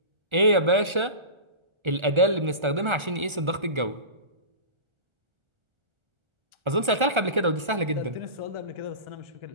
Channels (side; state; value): left; late; 1.4 ms